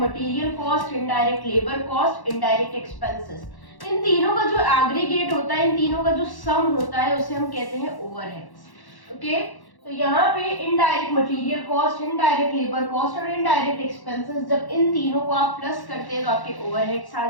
cost, indirect labour cost, indirect expenses, इन तीनों का जो एग्रीगेट होता है, इन तीनों का जो सम होता है, उसे हम कहते हैं ओवरहेड्स। ओके, तो यहाँ पे indirect material cost, indirect labour cost और इनडायरेक्ट एक्सपेंसेस, जब इन तीनों को आप प्लस करते हैं तो आपके ओवरहेड्स आ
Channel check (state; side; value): late; right; 1.1 ms